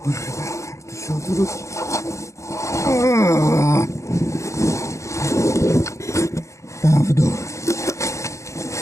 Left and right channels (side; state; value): right; late; 0.15 ms